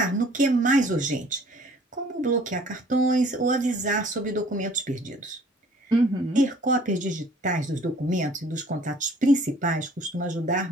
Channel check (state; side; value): normal; both; correlation 0.54